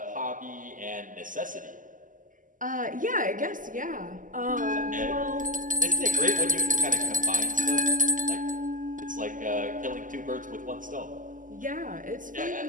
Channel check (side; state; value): left; late; 0.38 ms